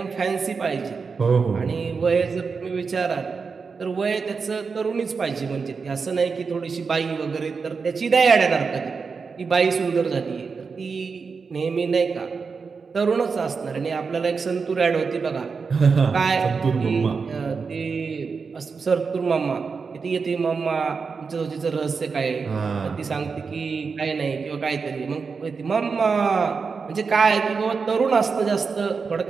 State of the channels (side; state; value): left; quieter; 5.1 dB